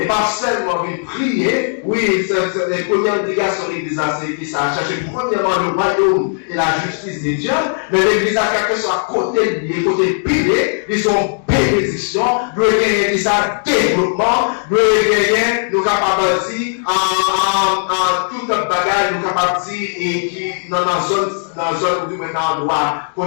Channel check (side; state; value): right; silent; digital silence